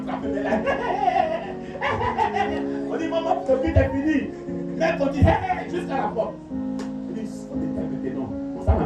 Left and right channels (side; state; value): both; identical; correlation 1.00